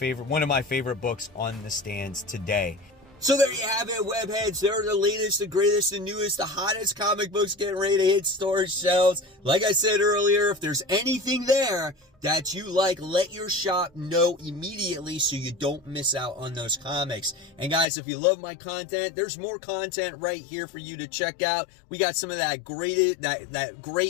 of my favorite books on the stands today. So there you have it, webheads. They're the latest, the greatest, the newest, the hottest comic books getting ready to hit store shelves. Like I said earlier, if there's anything there that you like, let your shop know immediately so you don't miss out on those comics. And guys, if you love my content, there's more content right here for you to check out. We got some of that great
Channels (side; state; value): right; drops out; at 17.9 s